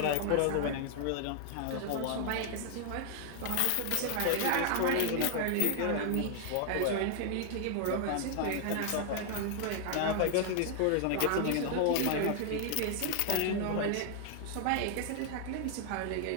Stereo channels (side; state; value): both; different; correlation 0.00